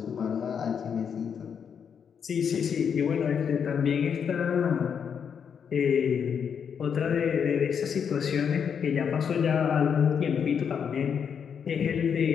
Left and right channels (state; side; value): quieter; right; 7.3 dB